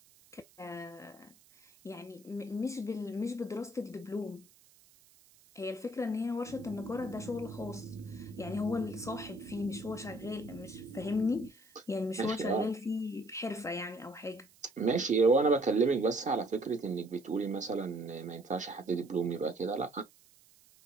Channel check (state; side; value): noise; right; hiss, 27 dB below the sound